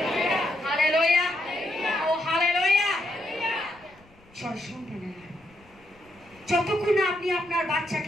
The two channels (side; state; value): left; noise; rumble, 29 dB below the sound